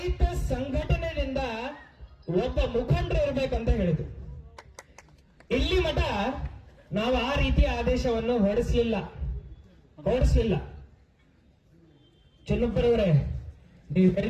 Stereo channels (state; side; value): identical; both; correlation 1.00